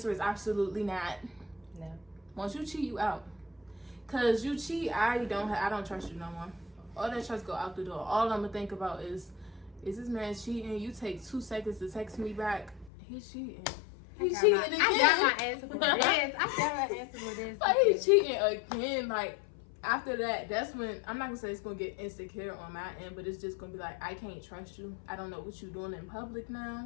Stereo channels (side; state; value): right; drops out; at 12.9 s